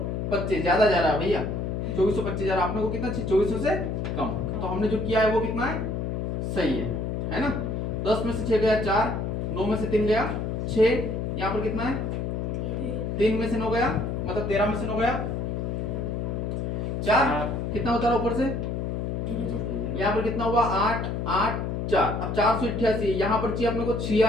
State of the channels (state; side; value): noise; left; hum, 2 dB below the sound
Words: ज्यादा जा रहा है भैया, 2425 जा रहा है। आपने को कितना चाहिए 2400 से कम। तो हमने जो किया है वो कितना है, सही है ना। 10 में से 6 गया 4, 9 में से 3 गया 6, यहाँ पर कितना है 3 में से 9 गया, मतलब 13 में से 9 गया 4, कितना होता है ऊपर से, यहाँ पर कितना हुआ 8 8 4। अब 488, यहाँ पर चाहिए अपने को